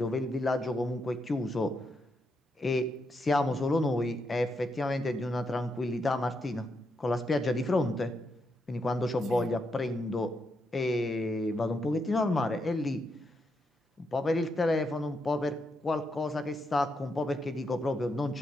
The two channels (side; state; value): both; normal; correlation 0.81